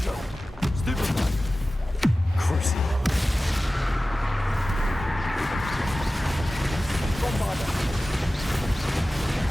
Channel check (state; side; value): normal; both; correlation 0.96